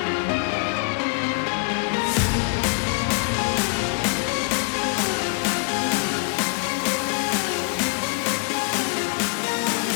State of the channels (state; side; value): quieter; right; 37.8 dB